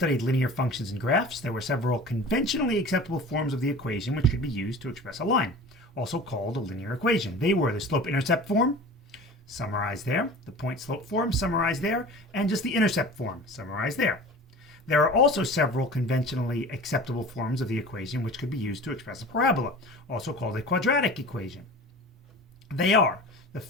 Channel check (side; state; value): both; normal; correlation 0.38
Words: linear functions and graphs. There were several conventionally acceptable forms of the equation which could be used to express a line, also called a linear equation. They were the slope-intercept form, summarized there, the point-slope form, summarized there, and just the intercept form, summarized there. There are also several conventionally acceptable forms of the equation which could be used to express a parabola, also called a quadratic equation. They are the